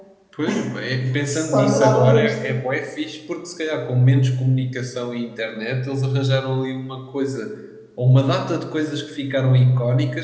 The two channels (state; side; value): identical; both; correlation 1.00